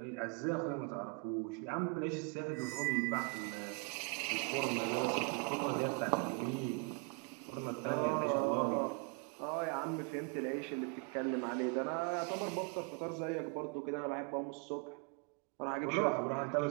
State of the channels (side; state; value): left; quieter; 32.9 dB